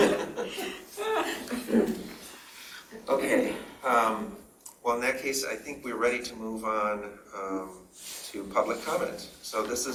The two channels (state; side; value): identical; both; correlation 1.00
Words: Okay, well, in that case, I think we're ready to move on to public comment. So this